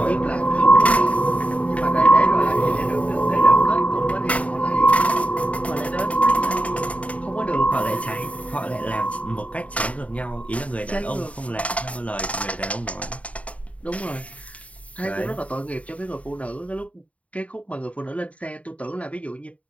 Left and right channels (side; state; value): right; late; 0.066 ms